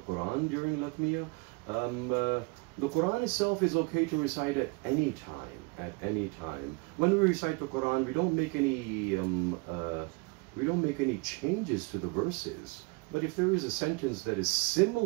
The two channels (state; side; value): quieter; left; 29.2 dB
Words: during Latmiya? The Quran itself is okay to recite at any time. When we recite the Quran, we don't make any changes to the verses. But if there is a sentence that is